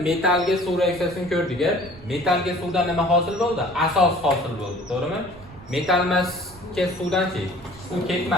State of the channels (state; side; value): noise; right; rumble, 20 dB below the sound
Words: metallga suv reaksiyasini ko'rdik. Metallga suvdan nima hosil bo'ldi? Asos hosil bo'ldi, to'g'rimi? Metall emasga suvdan-chi suv